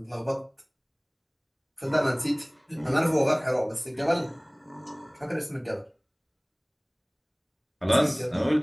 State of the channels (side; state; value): both; identical; correlation 1.00